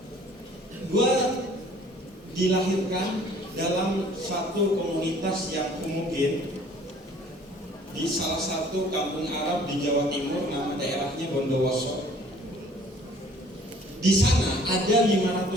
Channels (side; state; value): both; normal; correlation 0.54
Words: satu komunitas yang homogen di salah satu kampung Arab di Jawa Timur, nama daerahnya Bondowoso. Di sana ada